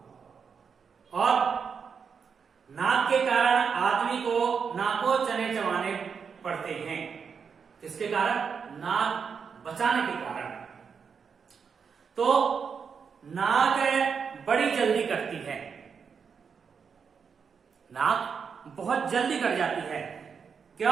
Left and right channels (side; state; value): left; quieter; 6.2 dB